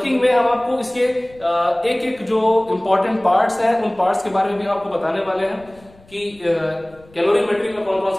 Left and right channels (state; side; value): noise; left; rumble, 26 dB below the sound